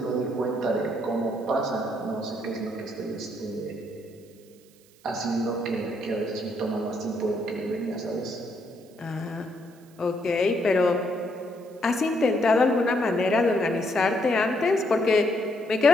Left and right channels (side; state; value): right; noise; hiss, 29 dB below the sound